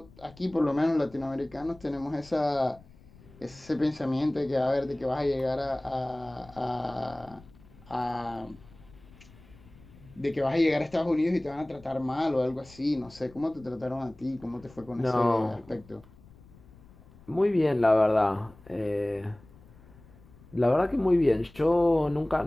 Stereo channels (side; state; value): left; noise; rumble, 24 dB below the sound